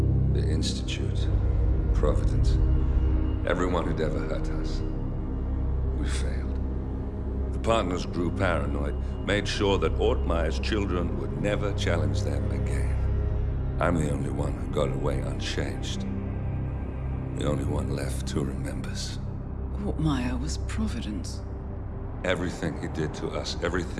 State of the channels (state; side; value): identical; both; correlation 1.00